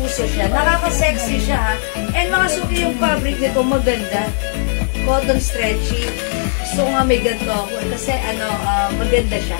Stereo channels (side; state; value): right; silent; digital silence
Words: siya. Nakaka-sexy siya, ha? And mga suki yung fabric nito, maganda. Cotton stretchy. Gusto ko nga may ganito ako. Kasi, maganda siya.